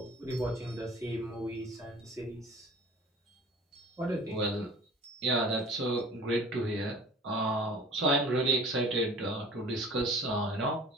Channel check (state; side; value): normal; both; correlation 0.44